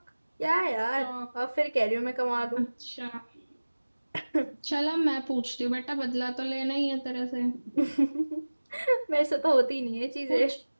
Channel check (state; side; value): inverted; both; correlation -1.00